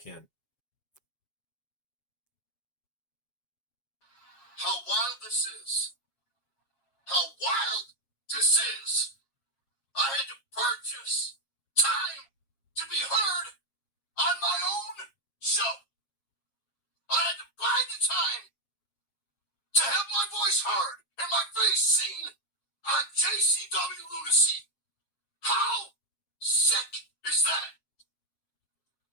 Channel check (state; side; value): late; right; 7.4 ms